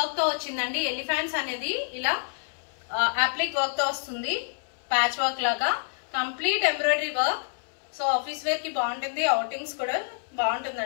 తో వచ్చిందండి. ఎలిఫెంట్స్ అనేది ఇలా అప్లిక్ వర్క్ తో వస్తుంది, ప్యాచ్ వర్క్ లాగా. Complete embroidery work. So office wear కి బాగుంటుంది, అవుటింగ్స్ కూడా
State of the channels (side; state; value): right; silent; 60 dB below the other